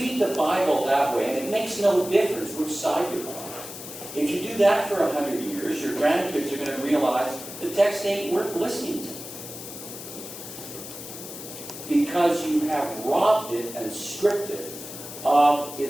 the Bible that way, and it makes no difference which side you're on, if you do that for 100 years, your grandkids are going to realize the text ain't worth listening to. Because you have robbed it and stripped it of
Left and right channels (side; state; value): left; noise; hiss, 11 dB below the sound